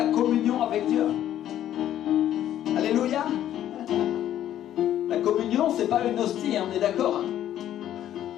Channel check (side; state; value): right; quieter; 11.6 dB